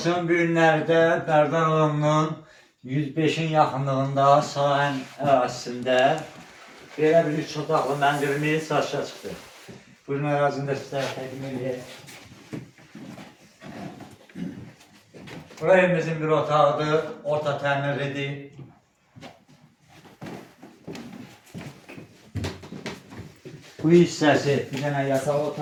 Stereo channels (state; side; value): identical; both; correlation 1.00